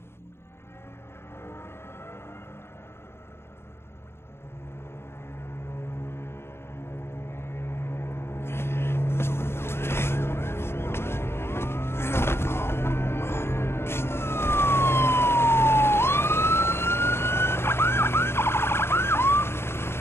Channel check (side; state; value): right; late; 0.12 ms